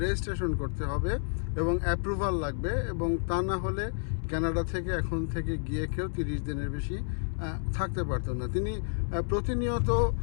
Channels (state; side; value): silent; right; 58 dB below the other